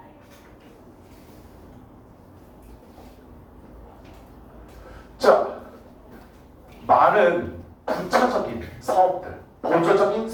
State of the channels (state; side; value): identical; both; correlation 1.00